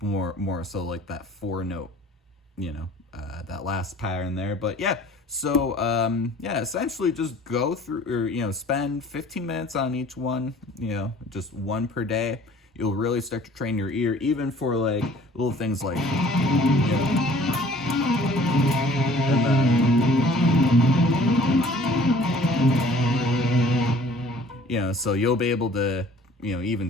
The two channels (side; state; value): both; normal; correlation 0.52